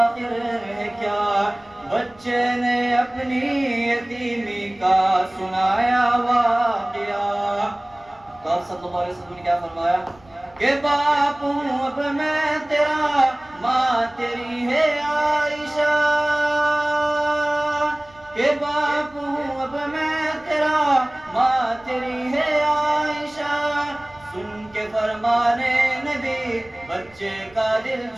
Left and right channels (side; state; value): right; noise; rumble, 28 dB below the sound